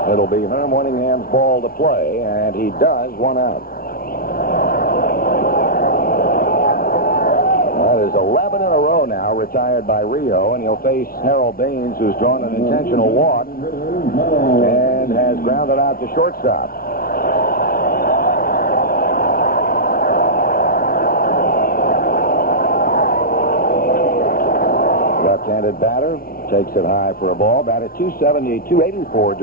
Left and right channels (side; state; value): right; late; 0.43 ms